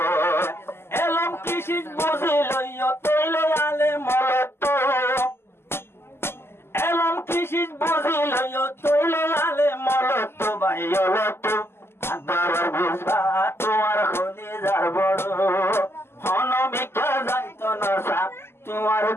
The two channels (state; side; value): late; right; 0.12 ms